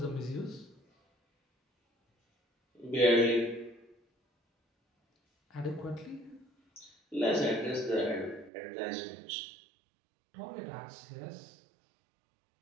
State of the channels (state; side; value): drops out; left; at 8.5 s